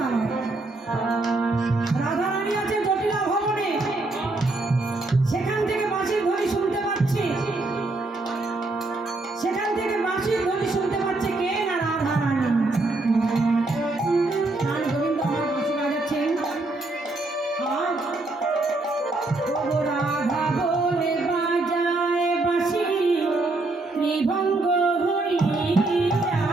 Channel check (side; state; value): left; quieter; 3.0 dB